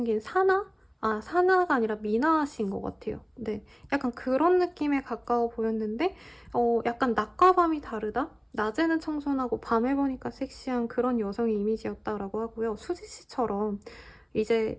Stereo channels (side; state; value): both; identical; correlation 1.00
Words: 사나? 사나가 아니라 미나 씨인 것 같아요. 네, 약간 그런 느낌에 가까워 보였는데 약간 낮과 밤이 다르다? 낮에는 청순하고 밤에 보니까 섹시한 그런 여성의 이미지였다라고 하고요. 수지 씨처럼 이제